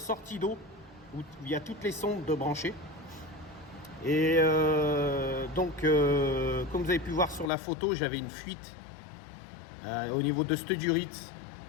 d'eau où il y a toutes les sondes de branchées. Et comme vous avez pu voir sur la photo, j'avais une fuite au niveau de cette durite.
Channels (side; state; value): right; drops out; at 7.5 s